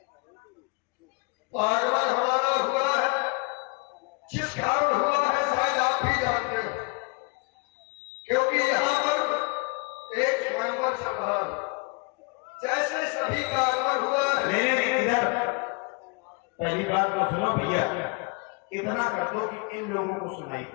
आगमन हमारा हुआ है, जिस कारण हुआ है शायद आप भी जानते हो, क्योंकि यहाँ पर एक स्वयंवर चल रहा है। जैसे सभी का आगमन हुआ है। इधर पहली बात तो सुनो भैया, इतना कर दो कि इन लोगों को सुनाई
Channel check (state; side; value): quieter; right; 29.3 dB